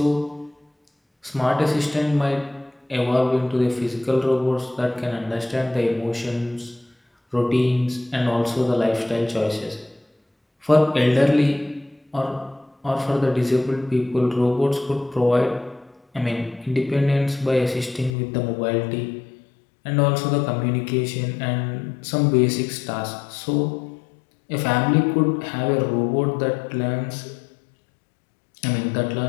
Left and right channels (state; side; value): drops out; right; at 18.1 s